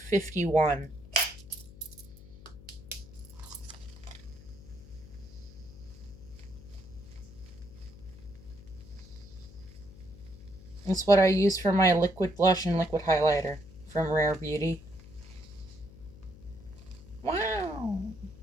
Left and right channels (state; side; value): noise; left; hum, 18 dB below the sound